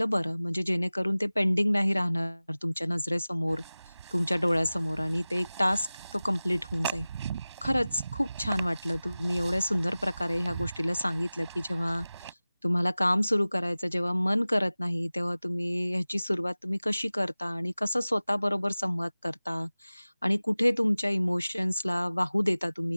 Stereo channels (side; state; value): both; inverted; correlation -0.98